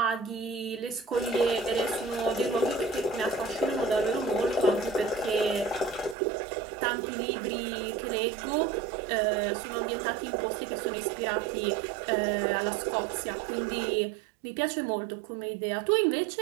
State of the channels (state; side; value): drops out; left; at 6.2 s